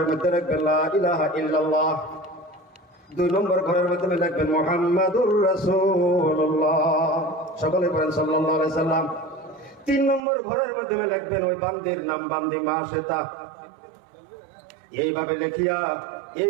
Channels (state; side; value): drops out; left; at 10.2 s